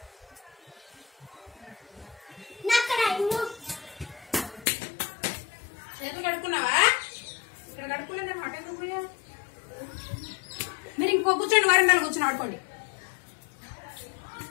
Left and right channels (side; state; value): right; drops out; at 4.7 s